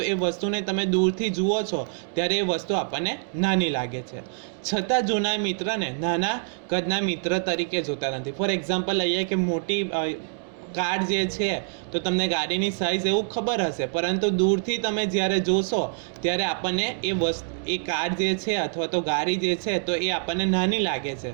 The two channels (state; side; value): silent; left; digital silence